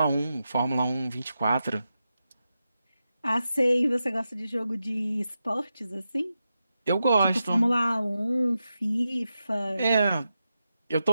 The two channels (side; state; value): both; inverted; correlation -0.89